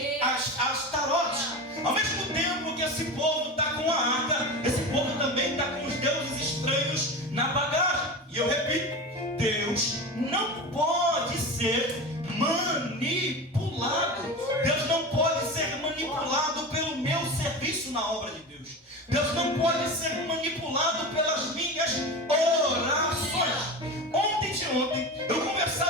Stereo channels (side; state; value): both; normal; correlation 0.27